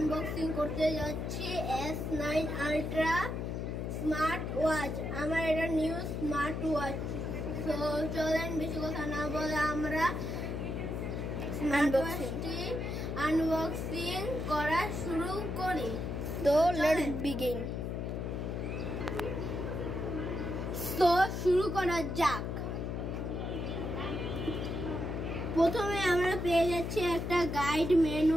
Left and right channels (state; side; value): noise; left; hum, 3 dB below the sound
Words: করতে যাচ্ছি S9 Ultra স্মার্ট ওয়াচ। আমার এটা নিউ স্মার্ট ওয়াচ। তো চলেন বেশি কথা না বলে আমরা স্মার্ট ওয়াচটি আনবক্সিং করা শুরু করি। তো লেটস বিগিন। তো শুরু করা যাক। প্রথমে আমরা পেয়ে যাচ্ছি একটা গাইড